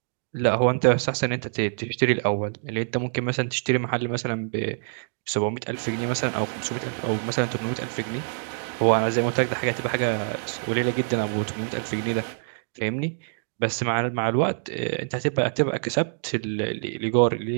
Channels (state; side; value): silent; left; digital silence